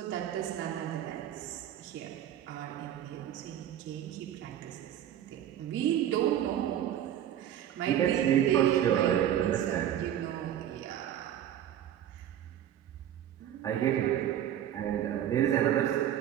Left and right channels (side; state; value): left; quieter; 11.0 dB